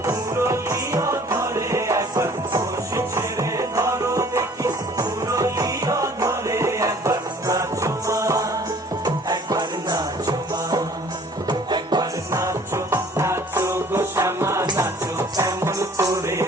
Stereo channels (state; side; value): normal; both; correlation 0.53